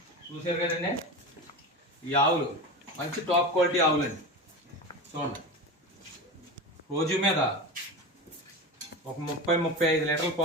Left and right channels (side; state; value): both; normal; correlation 0.25